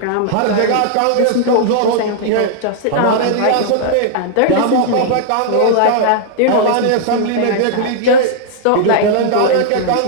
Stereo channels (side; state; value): both; different; correlation -0.01